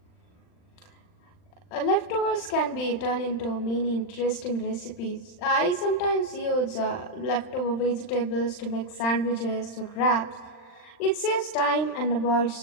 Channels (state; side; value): late; right; 39 ms